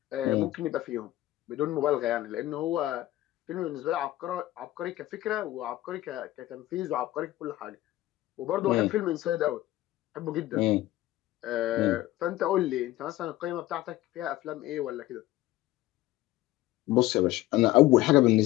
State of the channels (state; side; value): quieter; right; 16.2 dB